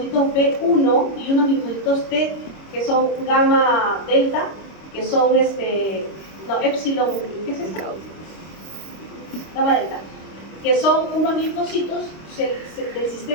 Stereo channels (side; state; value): right; late; 25 ms